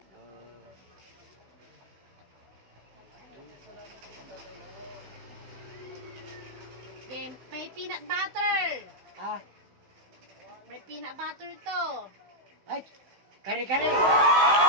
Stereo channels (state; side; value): late; left; 15 ms